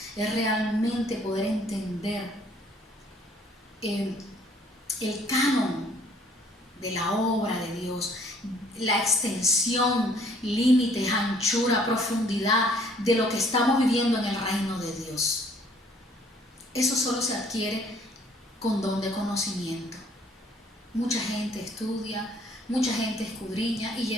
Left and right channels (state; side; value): normal; both; correlation 0.60